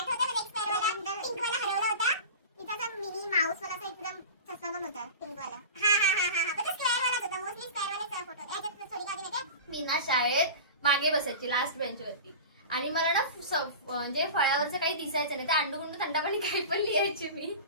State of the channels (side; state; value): both; inverted; correlation -0.32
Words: मला, एक स्क्वेअर वाला पिंक वाला हरवला होता. तिचा असा मिनी माऊस वाला एकदम चष्मा पण होता पिंक वाला. हा पण तो स्क्वेअर वालाच होता. मोस्टली स्क्वेअर वालाच फोटो. याच्यात थोडी काढली नाही. मी ना शाळेत मागे बसायची, लास्ट बेंचवरती. आणि मला ना म्हणजे फळ्यावरचं काही दिसायचं नाही. तर अंडूगुंडू थंडापाणी काही पण लिहायची मी.